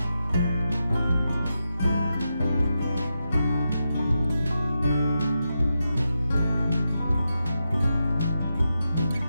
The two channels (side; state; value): both; inverted; correlation -0.87